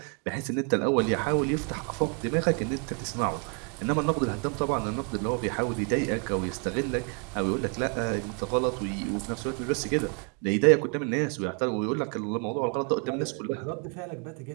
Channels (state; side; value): quieter; left; 38.0 dB